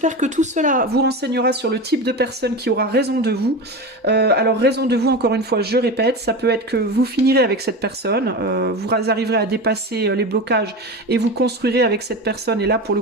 que tout cela vous renseignera sur le type de personne qui aura raison de vous. Alors raison de vous, encore une fois, je répète, ça peut être que vous finirez avec cette personne, vous arriverez à dépasser les blocages et vous construirez avec cette personne. Et là, pour le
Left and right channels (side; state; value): both; normal; correlation 0.25